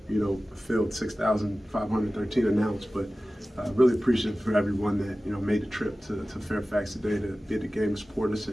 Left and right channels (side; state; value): both; normal; correlation 0.96